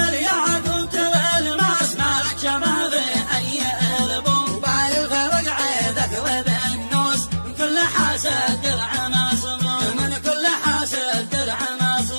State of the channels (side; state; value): both; inverted; correlation -1.00